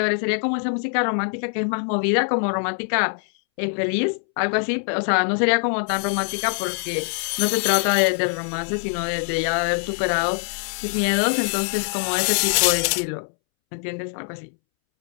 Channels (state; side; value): silent; right; 64 dB below the other